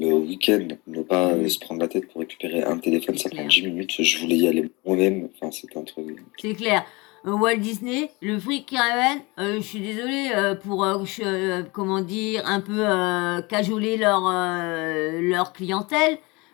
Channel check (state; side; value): quieter; right; 25.4 dB